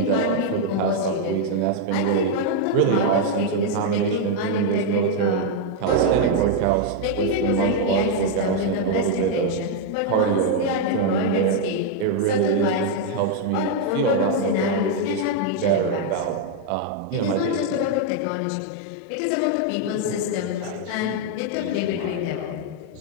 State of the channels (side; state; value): both; different; correlation 0.00